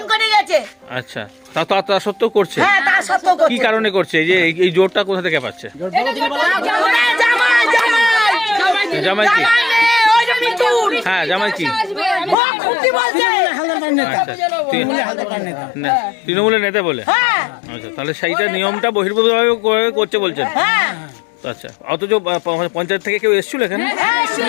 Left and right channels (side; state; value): right; drops out; at 12.4 s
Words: আচ্ছা, তা সত্ত্বেও করছে? কি কারণে করছে? এই জোরটা কোথা থেকে পাচ্ছে? জামাই কি? হ্যাঁ, জামাই কি? তৃণমূলের নেতা বলে? আচ্ছা, তাহলে সেইটা নিয়মটা বহির্ভূতভাবে করছে বলছেন? আচ্ছা, অথচ পঞ্চায়েত থেকে কেউ এসেছিল এখানে? হ্যাঁ,